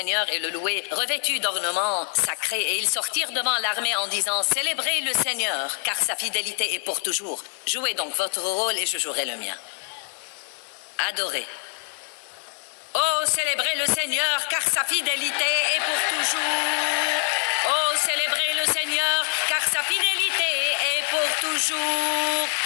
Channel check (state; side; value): quieter; right; 39.4 dB